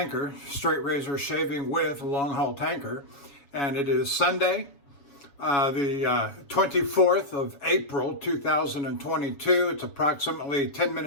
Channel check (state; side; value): late; right; 7.1 ms